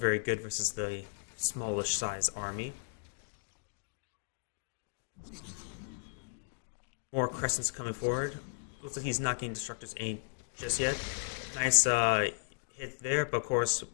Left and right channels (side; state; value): right; silent; digital silence